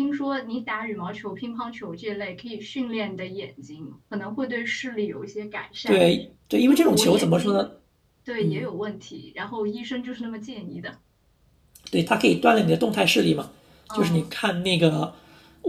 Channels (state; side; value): identical; both; correlation 1.00